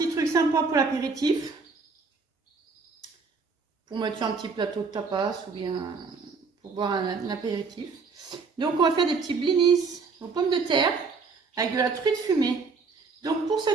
truc sympa pour l'apéritif. Pour mettre sur un petit plateau de tapas ou bien pour boire un apéritif. Donc on va faire des petits blinis aux pommes de terre avec de la truite fumée. Donc pour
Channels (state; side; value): quieter; left; 4.7 dB